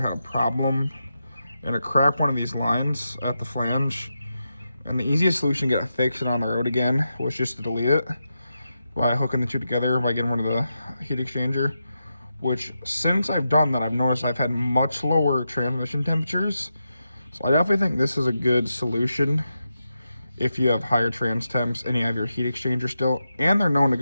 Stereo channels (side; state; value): both; inverted; correlation -0.88